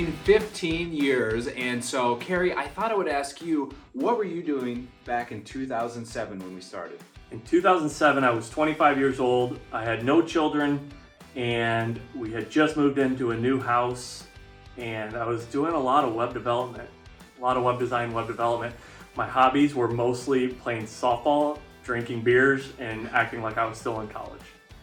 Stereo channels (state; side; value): identical; both; correlation 1.00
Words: 15 years, and so Carrie, I thought I would ask you, what were you doing back in 2007 when we started? In 2007, I was 25 years old. I had no children, and we had just moved into a new house, and I was doing a lot of web development, a lot of web design, web development. My hobbies were mostly playing softball, drinking beers, and acting like I was still in college.